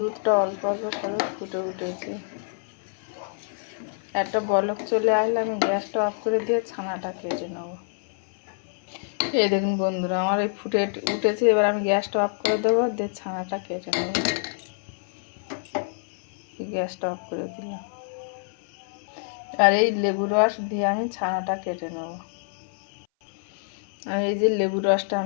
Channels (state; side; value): silent; right; 58 dB below the other